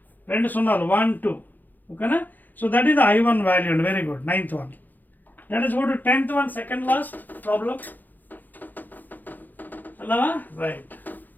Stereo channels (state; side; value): late; right; 0.085 ms